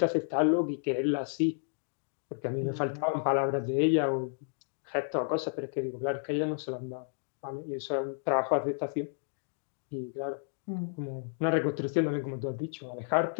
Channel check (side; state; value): right; silent; digital silence